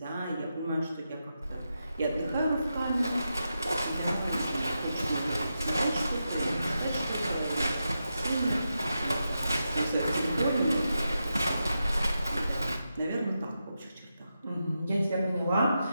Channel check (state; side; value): inverted; both; correlation -0.88